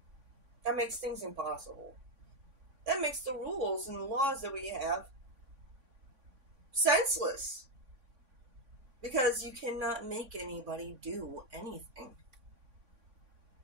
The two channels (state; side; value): late; left; 3.6 ms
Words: that makes things impossible. That makes the rules and the laws that we have senseless. Because you cannot make anybody do anything.